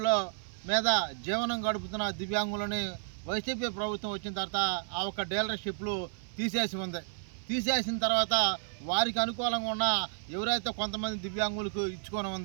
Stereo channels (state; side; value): silent; left; 57 dB below the other